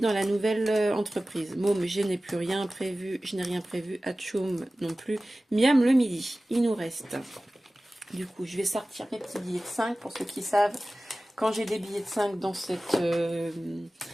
la nouvelle entreprise. Môme, je n'ai plus rien prévu. Je n'ai rien prévu. Atchoum non plus. Miam le midi. Il nous reste... Du coup, je vais sortir mes petits billets de 5 pour ceux qui savent. Quand j'ai des billets de 5 dans cette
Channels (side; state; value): both; normal; correlation 0.97